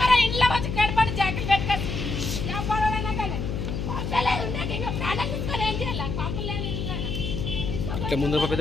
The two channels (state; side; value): noise; left; hum, 3 dB below the sound